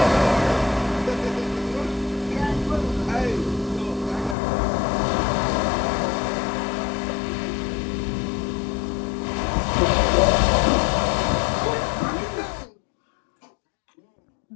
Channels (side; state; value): right; drops out; at 4.4 s